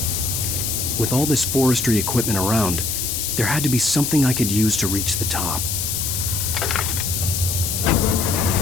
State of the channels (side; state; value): left; noise; hiss, 1 dB below the sound